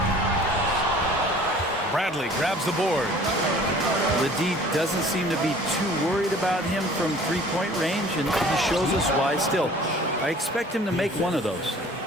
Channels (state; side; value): normal; both; correlation 0.49